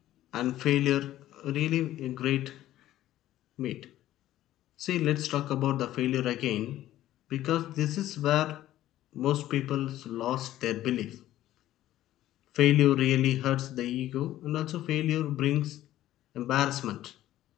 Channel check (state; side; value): quieter; right; 13.9 dB